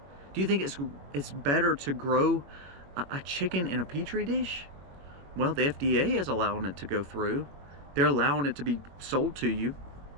Do you think it's better to grow a chicken in a petri dish? Well, the FDA is allowing it to go through. They're allowing it to be sold to you.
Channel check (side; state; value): left; late; 22 ms